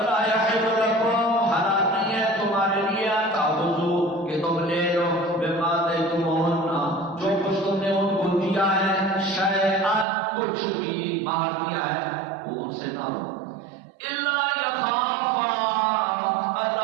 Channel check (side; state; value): left; drops out; at 10.1 s